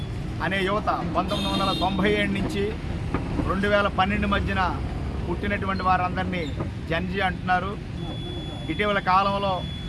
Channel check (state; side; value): identical; both; correlation 1.00